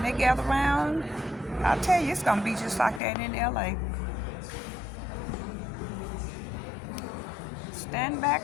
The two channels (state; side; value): drops out; right; at 3.0 s